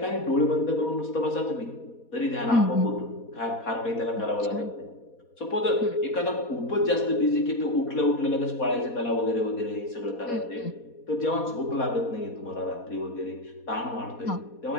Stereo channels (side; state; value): right; late; 4.2 ms